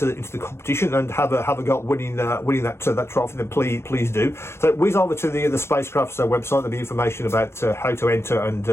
the competition and have a go at winning that trophy, then please do. So whiz over to the Spacecraft's website. There'll be information about how to enter and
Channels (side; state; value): right; late; 0.12 ms